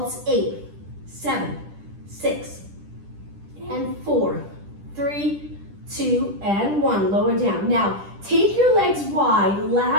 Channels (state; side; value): late; left; 10 ms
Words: 8, 7, 6, and 4, 3, 2, and 1. Lower down. Now, take your legs wide,